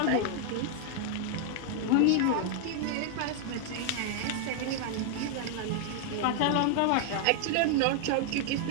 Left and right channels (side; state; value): both; different; correlation 0.00